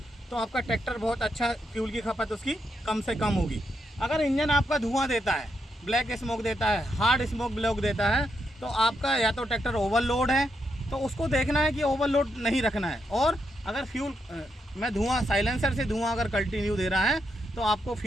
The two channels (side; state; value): both; normal; correlation 0.81